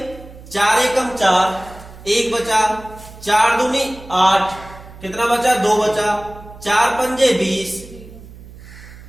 4 एकम 4, 1 बचा, 4 दूनी 8, कितना बचा? 2 बचा, 4 पंजे 20,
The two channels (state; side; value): noise; right; hum, 18 dB below the sound